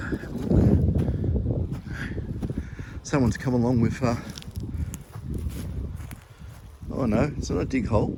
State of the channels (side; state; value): both; identical; correlation 1.00